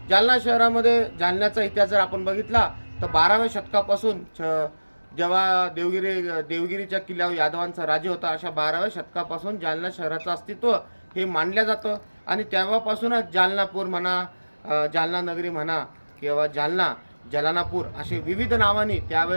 जालना शहरामध्ये जालन्याचा इतिहास जर आपण बघितला तर 12व्या शतकापासून जेव्हा देवगिरीच्या किल्ल्यावर यादवांचा राज्य होता अशा 12व्या शतकापासून जालना शहराचं अस्तित्व हे मानलं जातं आणि तेव्हापासूनच जालनापूर म्हणा, जालना नगरी म्हणा किंवा जालना जलानापूर असे विविध नावांनी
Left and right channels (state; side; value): inverted; both; correlation -1.00